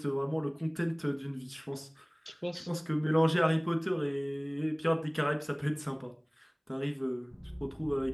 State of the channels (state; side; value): identical; both; correlation 1.00